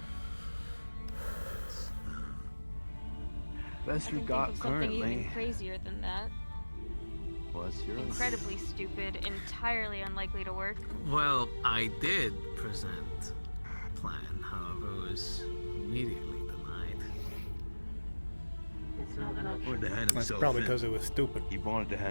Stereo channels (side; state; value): both; inverted; correlation -1.00